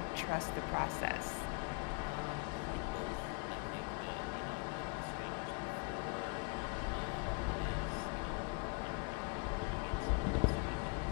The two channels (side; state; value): right; quieter; 33.4 dB